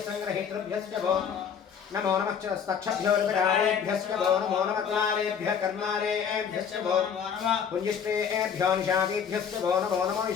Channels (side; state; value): right; quieter; 7.4 dB